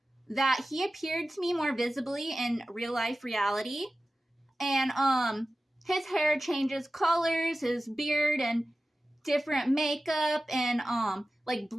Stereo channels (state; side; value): normal; both; correlation 0.95